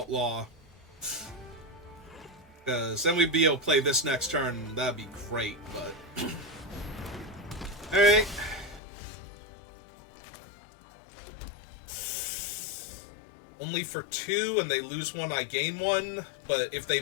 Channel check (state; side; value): drops out; right; at 8.8 s